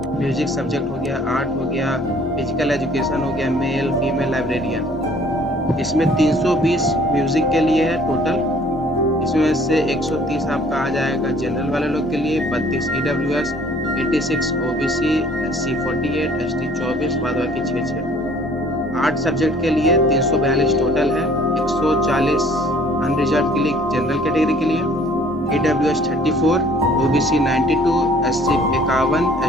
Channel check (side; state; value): both; normal; correlation 0.55